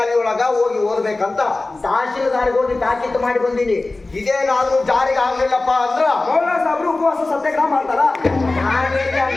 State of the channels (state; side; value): quieter; right; 3.2 dB